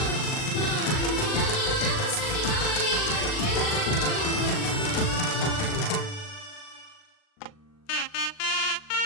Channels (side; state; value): right; late; 39 ms